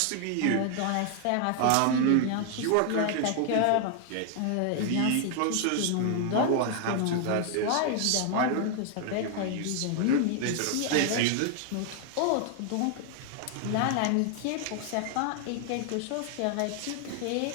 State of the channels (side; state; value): both; different; correlation 0.00